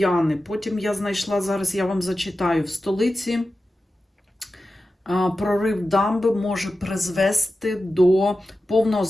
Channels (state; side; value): normal; both; correlation 0.93